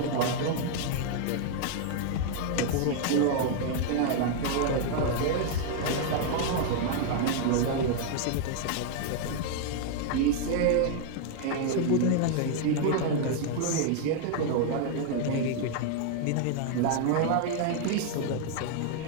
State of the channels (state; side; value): different; both; correlation 0.00